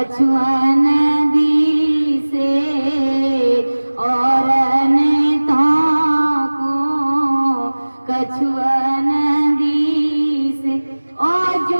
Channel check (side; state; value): both; inverted; correlation -1.00